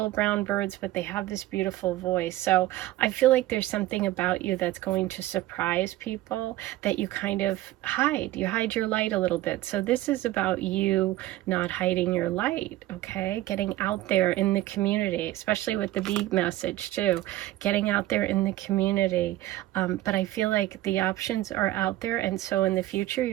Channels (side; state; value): left; quieter; 15.9 dB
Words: brown birds, but they have this beautiful voice. So I feel like there's something about you that's going to surprise people that you kind of hide. You hide your light a little bit. So this is about you not hiding your light, okay? Getting out there in the community, especially with the bee message too, getting out there in the community. But I feel like the options are out there, and so in the future